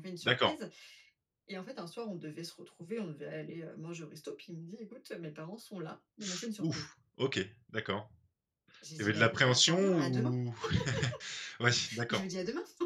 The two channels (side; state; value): both; identical; correlation 1.00